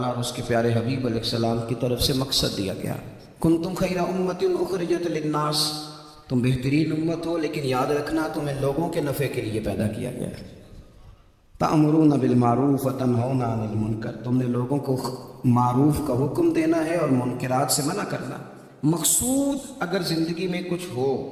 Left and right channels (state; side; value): identical; both; correlation 1.00